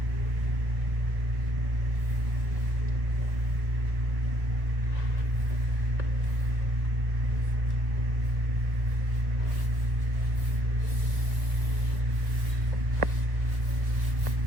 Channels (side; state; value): left; late; 1.7 ms